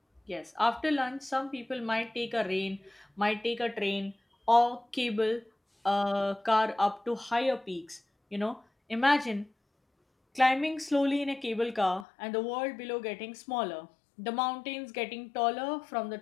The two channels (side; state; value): right; drops out; at 12.1 s